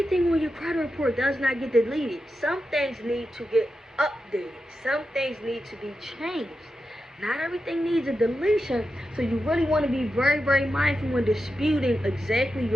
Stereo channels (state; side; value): normal; both; correlation 0.89